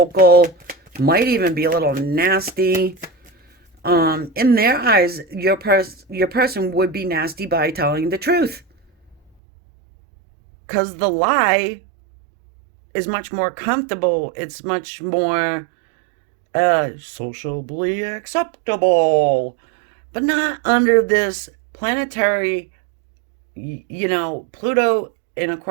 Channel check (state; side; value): drops out; left; at 9.3 s